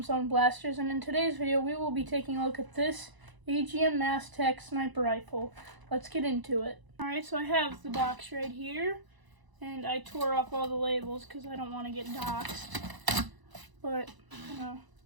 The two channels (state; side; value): late; left; 1.0 ms